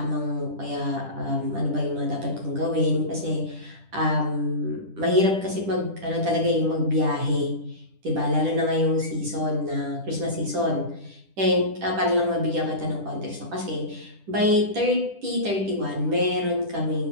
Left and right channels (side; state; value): left; late; 10 ms